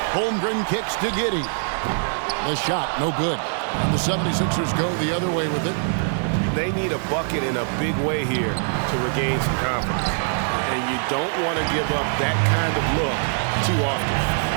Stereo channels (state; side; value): silent; left; 63 dB below the other